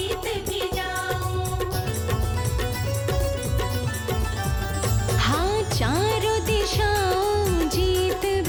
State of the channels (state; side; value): identical; both; correlation 1.00